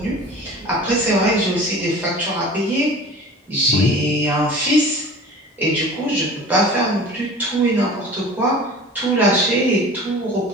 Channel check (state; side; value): normal; both; correlation 0.40